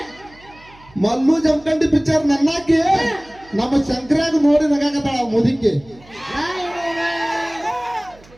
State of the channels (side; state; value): right; noise; hum, 26 dB below the sound